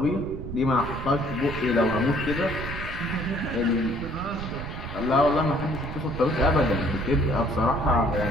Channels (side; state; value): right; noise; rumble, 8 dB below the sound